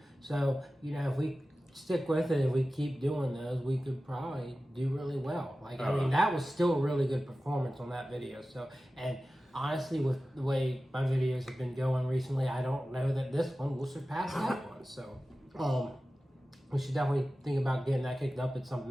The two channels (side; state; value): both; normal; correlation 0.95